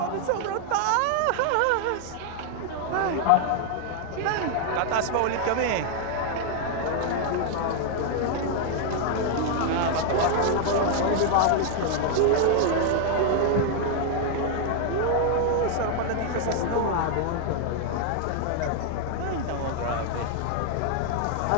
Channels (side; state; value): both; different; correlation 0.00